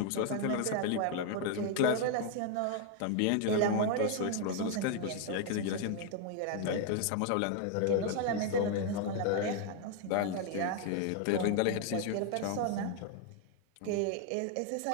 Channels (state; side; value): different; both; correlation 0.00